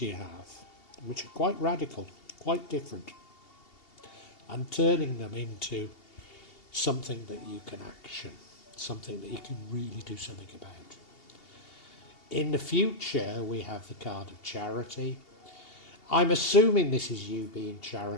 you have, which are quite radical, quite different, and turning them into something that you can action, something that you can really do something about. In the future, we have the card of charity. I'm assuming this is you being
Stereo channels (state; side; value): late; right; 2.8 ms